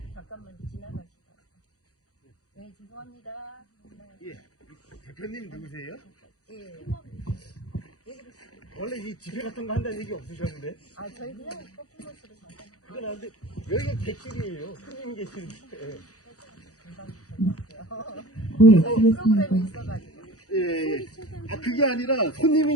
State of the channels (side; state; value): right; late; 0.66 ms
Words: 지나가시다. 네, 죄송합니다. 예, 대표님 누구세요? 예. 원래 이 집회 같은 거 한다는 얘기 없으셨는데? 아, 저희 그냥 퍼포먼스로 잠깐. 그건 안 돼. 여기가 객실이에요. 손님 계시는데. 프로그램이 있어가지고. 예. 아, 그게 아니라 손님이